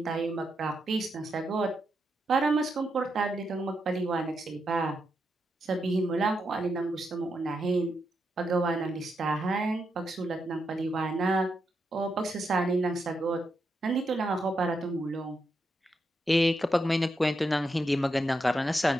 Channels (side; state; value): both; normal; correlation 0.83